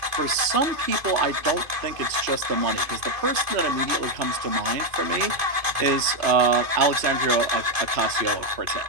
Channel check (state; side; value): late; left; 2.5 ms